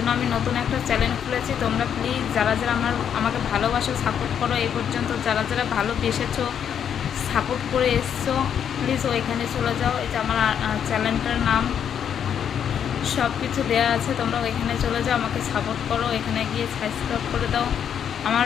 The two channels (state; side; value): quieter; right; 8.5 dB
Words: আমি নতুন একটা চ্যানেল খুলেছি। তোমরা প্লিজ যারা যারা আমাকে ভালোবাসো, সাপোর্ট করো, এই পর্যন্ত যারা যারা ভালোবেসেছো, সাপোর্ট করে এসছো, প্লিজ ওইখানে চলে যাও। এই যে আমার চ্যানেলটার নাম সব কিছু দেওয়া আছে, তোমরা ওইখানে চলে যাও, আমাকে সাপোর্ট করো। এখানে গিয়ে সাবস্ক্রাইব করে দাও। আমার